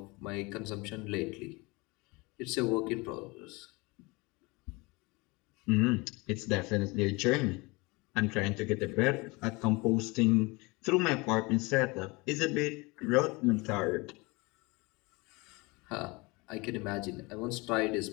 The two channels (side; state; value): right; quieter; 25.5 dB